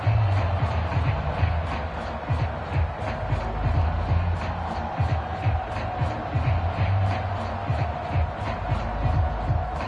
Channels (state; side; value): identical; both; correlation 1.00